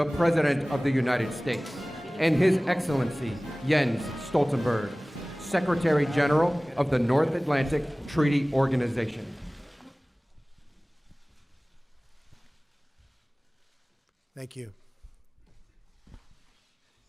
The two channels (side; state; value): both; normal; correlation 0.98